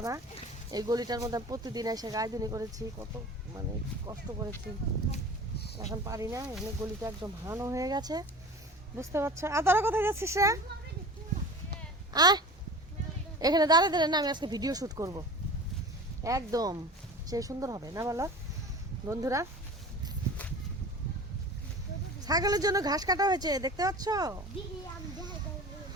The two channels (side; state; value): both; normal; correlation 0.37